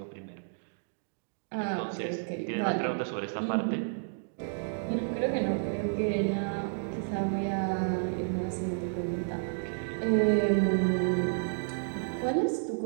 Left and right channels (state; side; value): silent; left; digital silence